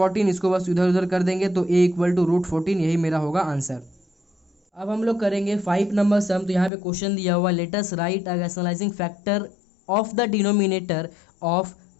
इसको बस इधर उधर कर देंगे तो a इक्वल टू √14, यही मेरा होगा आंसर। अब हम लोग करेंगे 5 नंबर सम। तो यहाँ पे क्वेश्चन दिया हुआ, let us right a rationalising factor of the denominator of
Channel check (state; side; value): drops out; right; at 6.7 s